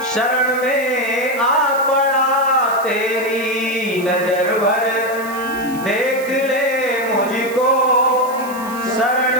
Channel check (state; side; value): noise; right; hiss, 17 dB below the sound